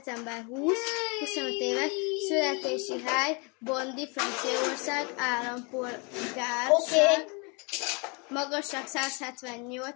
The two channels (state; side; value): quieter; right; 32.3 dB